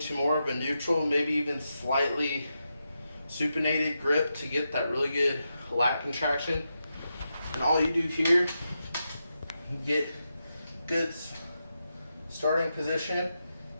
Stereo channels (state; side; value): inverted; both; correlation -0.87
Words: more of a neutral, maybe even slightly supinated grip to get that really good lat contraction. And all you do here, get good starting position.